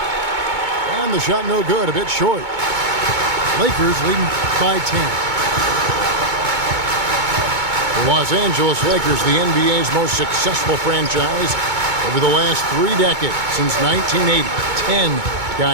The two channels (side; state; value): left; late; 2.2 ms